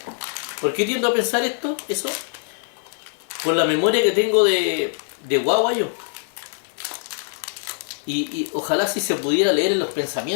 ¿Por qué tiendo a pensar eso? Por la memoria que tengo de guagua yo. Y ojalá si se pudiera leer en los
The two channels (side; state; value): right; silent; 63 dB below the other